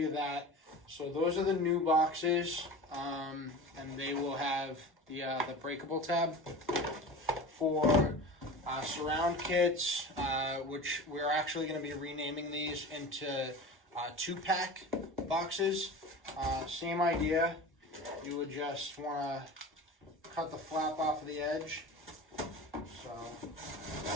that. So those are the new boxes, and they will have the breakable tab for surround kits, which we're actually going to be renaming these into 2-pack boxes. Same idea. You would just want to cut the flap off of the edge. So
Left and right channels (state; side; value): normal; both; correlation 0.34